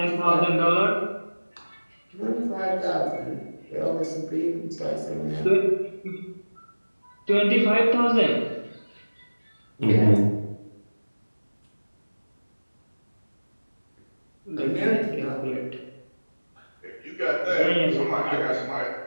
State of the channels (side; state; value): both; inverted; correlation -1.00